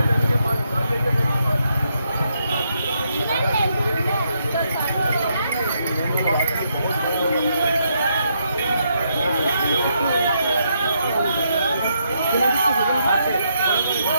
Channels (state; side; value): inverted; both; correlation -0.77